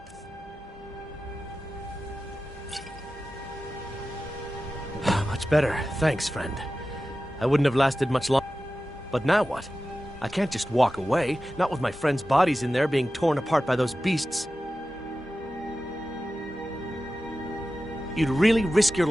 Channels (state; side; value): normal; both; correlation 0.94